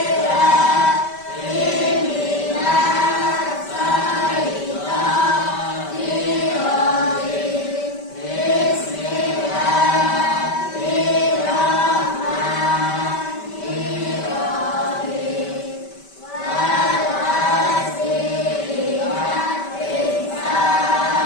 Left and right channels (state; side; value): late; right; 5.2 ms